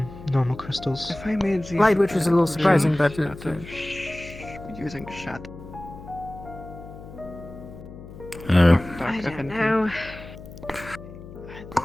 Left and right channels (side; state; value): left; noise; hum, 15 dB below the sound